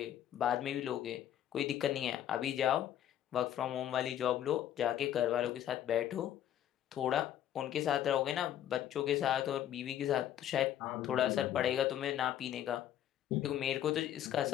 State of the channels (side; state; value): right; quieter; 11.1 dB